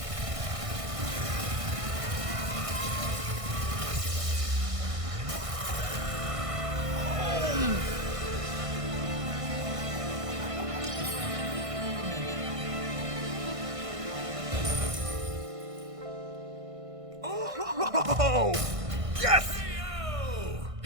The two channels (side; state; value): left; late; 1.6 ms